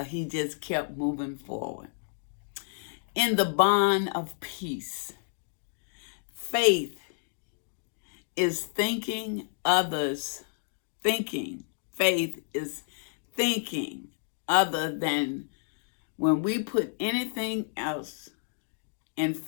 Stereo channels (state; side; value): silent; right; digital silence